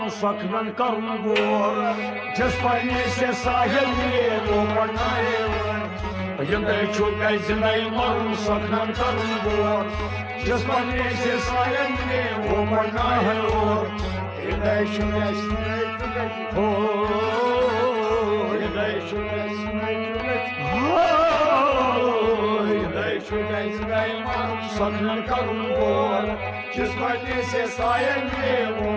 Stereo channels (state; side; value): identical; both; correlation 1.00